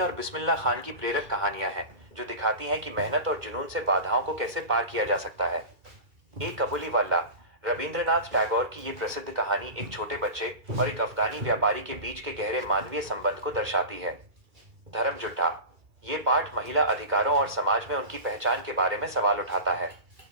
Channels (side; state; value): left; late; 2.3 ms